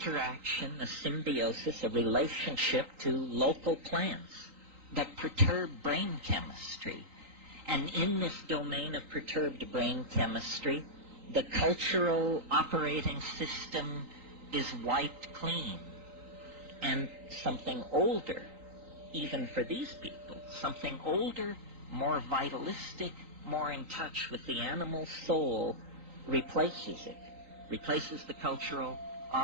a symbiosis, a relationship to local plants that perturb brain chemistry. And in this domain of perturbed brain chemistry, the cultural operating system is wiped clean. And something older, even for these people, something older, more vitalistic, more in touch with the animal soul, replaces it, replaces the cultural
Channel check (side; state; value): left; late; 3.8 ms